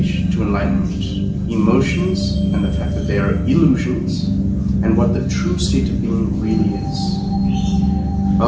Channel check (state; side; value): identical; both; correlation 1.00